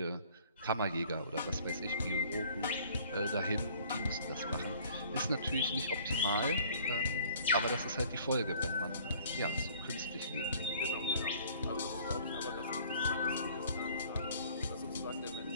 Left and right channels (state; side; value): inverted; both; correlation -0.55